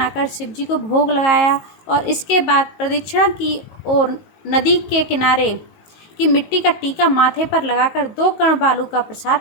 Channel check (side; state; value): right; late; 19 ms